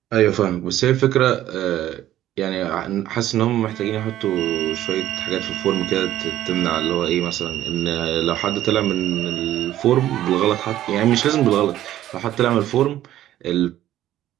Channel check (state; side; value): quieter; left; 13.1 dB